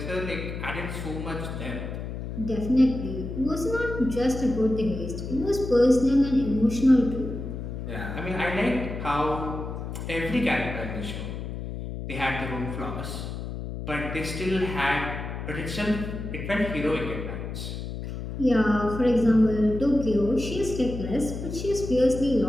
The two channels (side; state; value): left; noise; hum, 7 dB below the sound